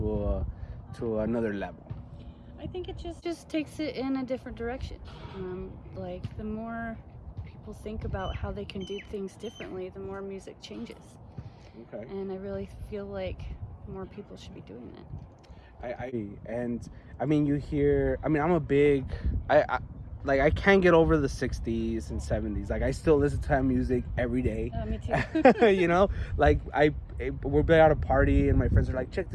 another level? I think it just takes it in a different direction. Like the more people think about how they can do things differently, the more music changes. Okay. And I really feel like more people should be doing that. I mean, you hear. I mean, I'm a big. I can't get over the 60s and 70s. Like, I still listen to that music every day. Me too. You know, like we're at a party and my friends are like, check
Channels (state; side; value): identical; both; correlation 1.00